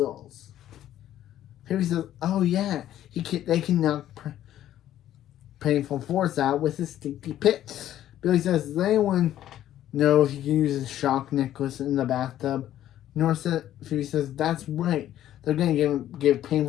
Phoebe says, oh yeah, they can knock Painful Force out with his stinky pit. Billy says, does anyone know if he can use his shock necklace in the bathtub? Phoebe says, that's right. They're going to give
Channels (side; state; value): right; quieter; 12.3 dB